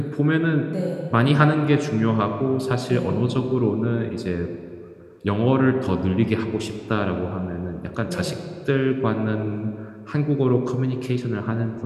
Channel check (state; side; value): identical; both; correlation 1.00